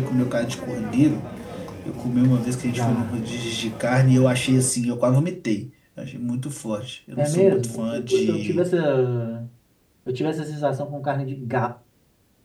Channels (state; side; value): identical; both; correlation 1.00